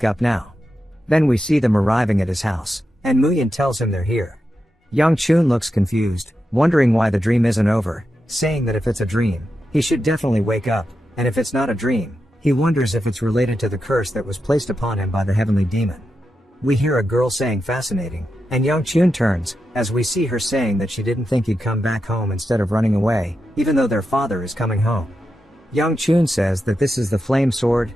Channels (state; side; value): normal; both; correlation 0.88